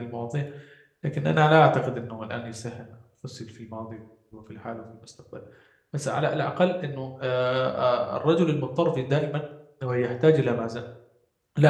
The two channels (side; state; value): both; identical; correlation 1.00